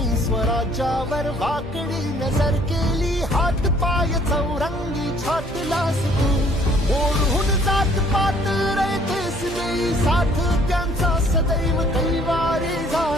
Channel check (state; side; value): normal; both; correlation 0.59